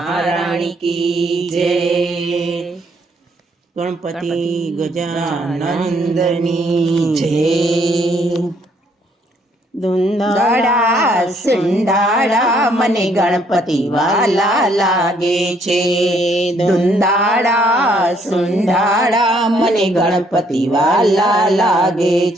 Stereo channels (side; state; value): both; normal; correlation 0.67